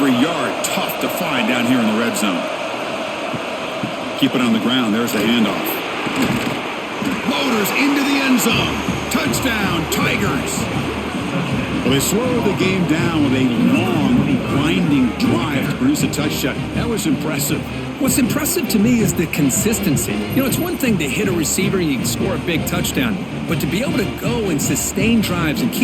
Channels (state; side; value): identical; both; correlation 1.00